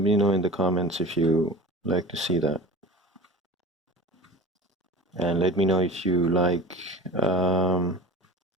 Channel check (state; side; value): normal; both; correlation 0.35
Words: in the comments if you like to see that, and let me know if you like